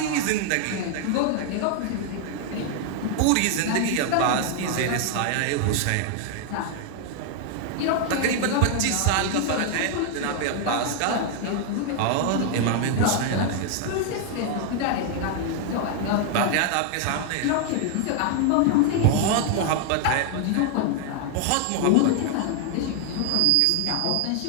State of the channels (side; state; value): both; different; correlation 0.00